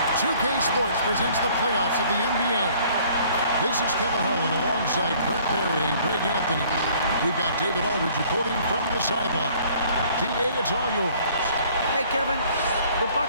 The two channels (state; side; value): inverted; both; correlation -0.57